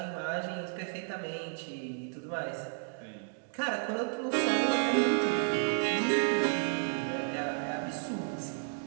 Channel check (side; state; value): left; silent; 56 dB below the other